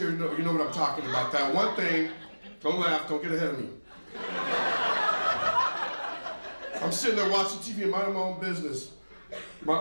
you know what I'm talking about. That one thing, don't laugh, don't get ahead of me. I'm sitting there watching TV and minding my own business. My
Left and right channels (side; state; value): both; inverted; correlation -1.00